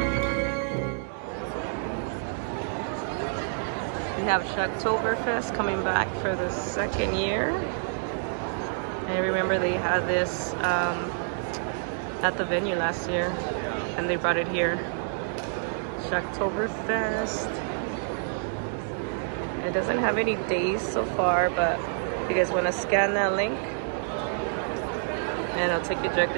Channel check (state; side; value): silent; left; digital silence